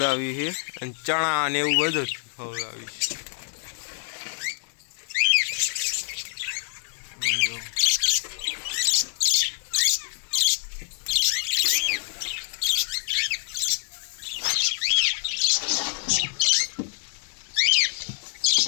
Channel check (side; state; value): right; silent; digital silence